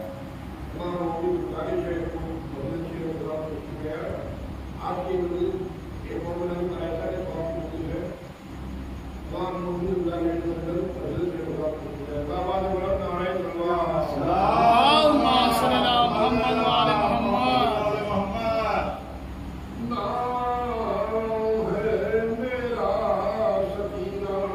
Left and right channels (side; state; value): both; identical; correlation 1.00